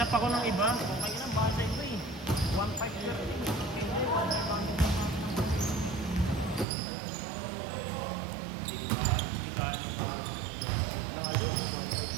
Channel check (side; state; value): left; drops out; at 6.7 s